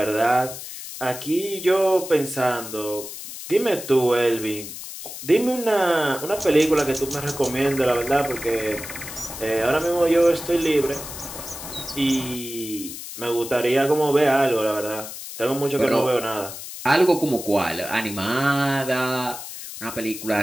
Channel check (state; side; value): noise; left; hiss, 10 dB below the sound